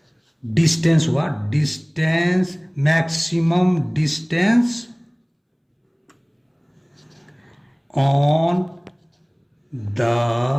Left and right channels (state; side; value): identical; both; correlation 1.00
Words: डिस्टेंस हुआ, maximum distance on the